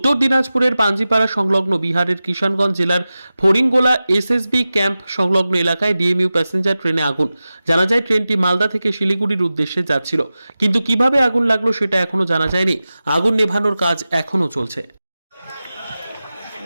দিনাজপুরের পাঞ্জিপাড়া সংলগ্ন বিহারের কিষানগঞ্জ জেলার ফড়িংগোলা এসএসবি ক্যাম্প সংলগ্ন এলাকায় ডিএমইউ প্যাসেঞ্জার ট্রেনে আগুন। জানা যায় ট্রেনটি মালদা থেকে শিলিগুড়ির উদ্দেশ্যে যাচ্ছিল, কিন্তু কিভাবে আগুন লাগলো সেটা এখনো জানা যায়নি। আগুন নেভানোর কাজ এখনো চলছে।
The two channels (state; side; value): inverted; both; correlation -0.95